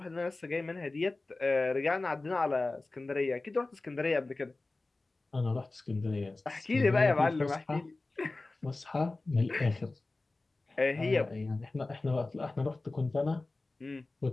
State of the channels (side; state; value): right; quieter; 3.2 dB